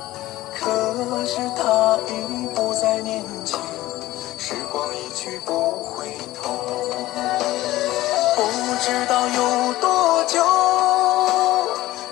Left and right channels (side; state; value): right; quieter; 16.5 dB